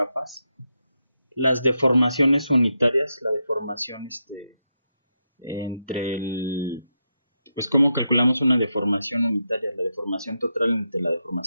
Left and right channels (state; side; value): inverted; both; correlation -0.85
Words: Las deformaciones unitarias, la deformación entre el... Pues cómo calculamos una deformación unitaria, la deformación total entre la